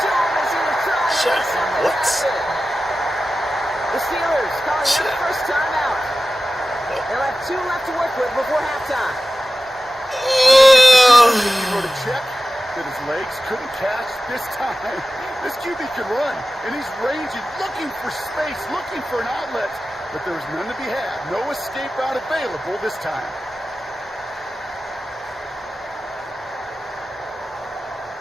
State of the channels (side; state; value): both; normal; correlation 0.94